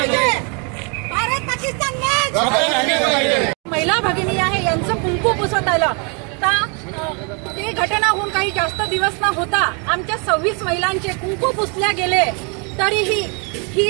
भारत पाकिस्तान मॅच. महिला भगिनी आहे यांचं कुंकू पुसत आलं तर ते घटना होऊन काही जास्त दिवस न होता आमच्या 26 महिलांचे कुंकू पुसल्या गेले. तरीही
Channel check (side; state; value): left; quieter; 35.2 dB